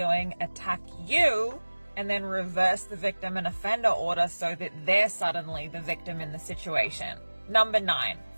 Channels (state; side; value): inverted; both; correlation -1.00